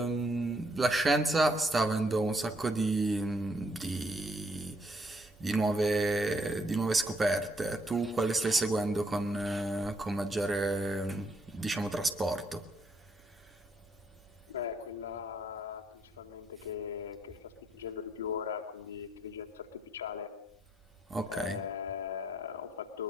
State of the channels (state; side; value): normal; both; correlation 0.73